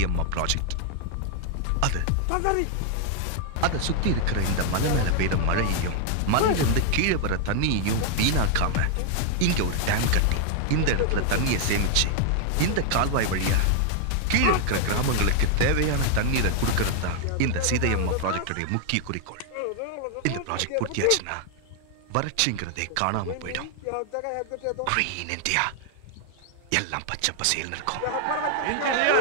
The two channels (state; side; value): different; both; correlation 0.00